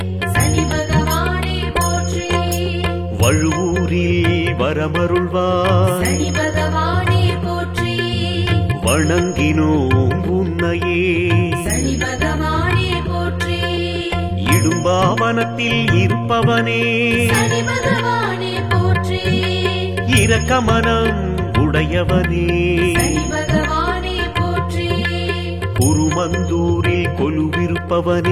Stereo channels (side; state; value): both; identical; correlation 1.00